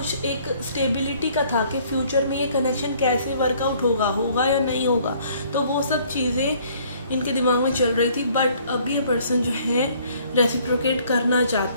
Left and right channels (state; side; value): inverted; both; correlation -0.60